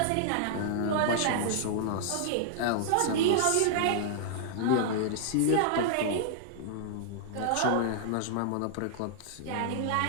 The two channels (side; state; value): both; different; correlation -0.01